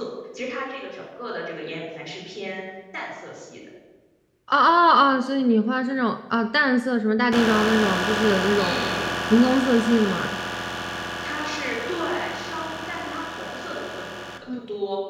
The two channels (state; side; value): identical; both; correlation 1.00